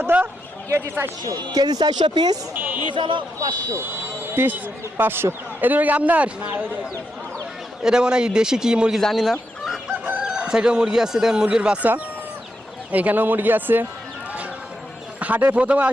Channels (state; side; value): normal; both; correlation 0.83